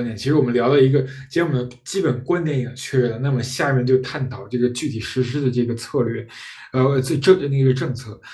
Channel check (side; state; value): both; identical; correlation 1.00